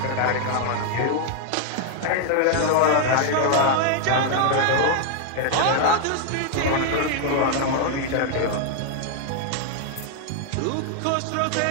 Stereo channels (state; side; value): different; both; correlation 0.00